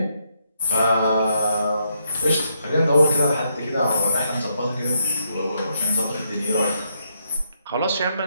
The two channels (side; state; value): both; inverted; correlation -0.77